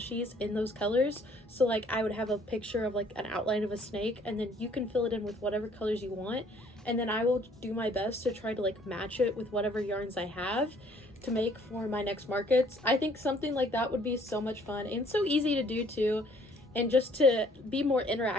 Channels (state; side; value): normal; both; correlation 0.60